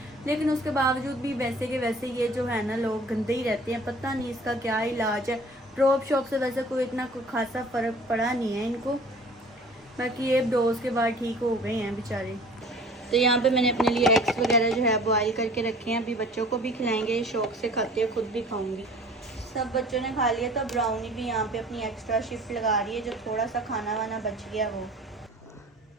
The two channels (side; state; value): both; normal; correlation 0.47